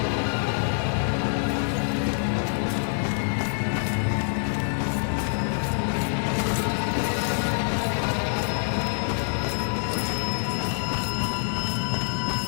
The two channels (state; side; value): silent; right; digital silence